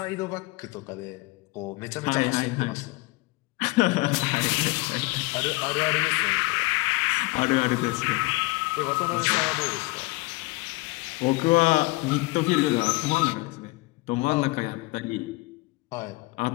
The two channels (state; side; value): quieter; right; 23.8 dB